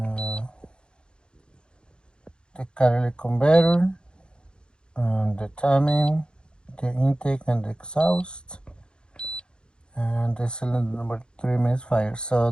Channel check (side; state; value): right; late; 0.051 ms